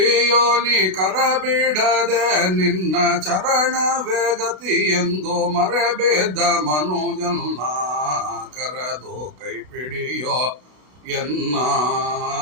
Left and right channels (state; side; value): late; left; 32 ms